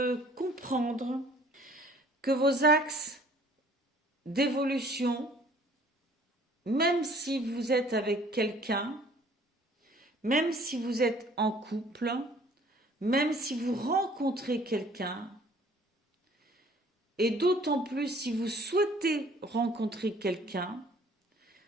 comprendre que vos axes d'évolution, même si vous êtes avec quelqu'un, même si vous êtes en couple, même si vous rencontrez quelqu'un, et d'autant plus si vous souhaitez rencontrer quelqu'un,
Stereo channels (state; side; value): normal; both; correlation 0.55